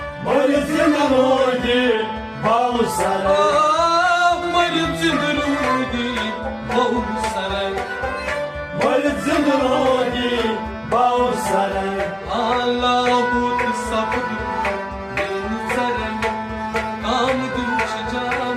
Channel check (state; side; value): identical; both; correlation 1.00